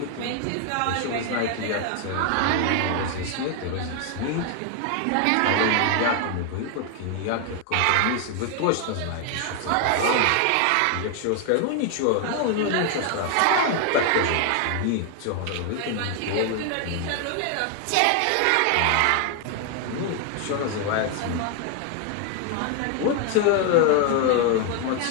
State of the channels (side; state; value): both; different; correlation 0.01